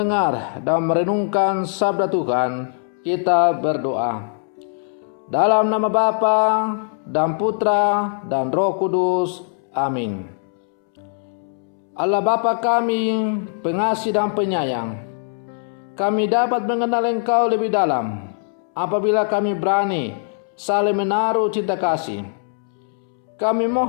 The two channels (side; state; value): right; silent; 65 dB below the other